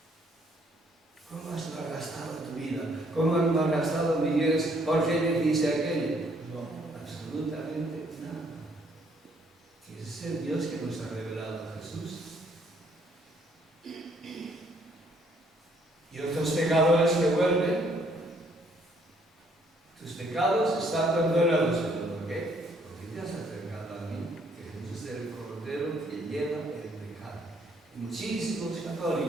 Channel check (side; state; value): both; normal; correlation 0.67